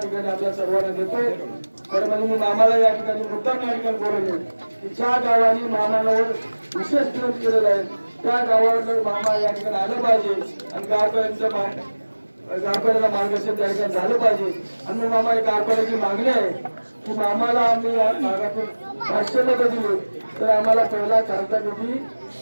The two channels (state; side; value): inverted; both; correlation -1.00